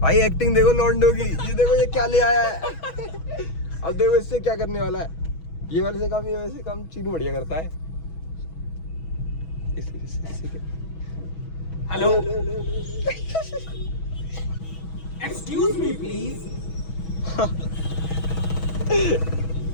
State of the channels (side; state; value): right; late; 6.2 ms